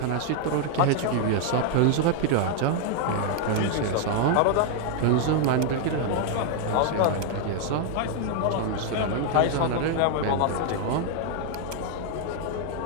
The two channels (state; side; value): different; both; correlation 0.00